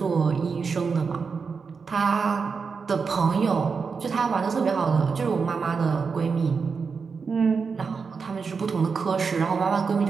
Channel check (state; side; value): quieter; left; 5.3 dB